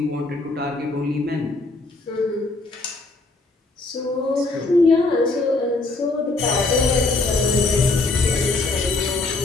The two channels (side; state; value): right; quieter; 3.3 dB